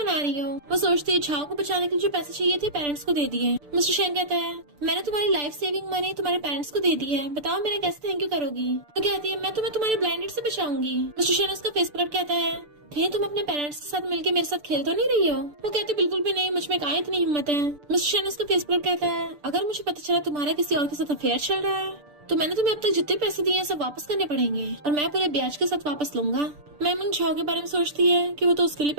रही हो? वो सोचती है झाओ को बचाने के लिए जो पैसे चाहिए थे पेरेंट्स को दे दिए। मिस्टर शैन कहता है मैंने तुम्हारी लाइफ सेविंग मनी तुम्हारे पेरेंट्स को दे दी है, बताओ मेरा कैसे थैंक यू करोगी? तो कहती है मैं तुम्हें तुम्हारे ब्लाइंडेड से बचाऊंगी। मिस्टर शैन उसका फेस पकड़ कहता है थे तुम अपने पेरेंट्स के साथ मिलके मेरे साथ खेल तो नहीं रही हो? वो कहते बिल्कुल भी नहीं, मुझ में कहाँ इतनी हिम्मत है। मिस्टर शैन उसका फेस पर कहता है अगर मुझे पता चला तुम्हारा किसी और के साथ अफेयर चल रहा है तो मैंने तुम्हें अब तक जितने पैसे दिए हैं सब वापस करने पड़ेंगे और मैं पूरे ब्याज के साथ वापस लूंगा। मैम झाओ के बारे में सोचती है कि वो तो उसके लिए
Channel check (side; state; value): left; late; 6.8 ms